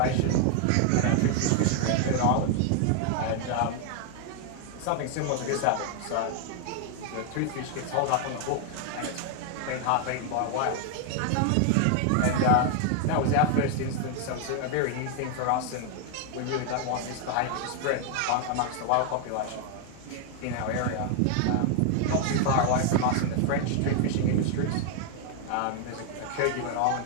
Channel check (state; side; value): different; both; correlation 0.00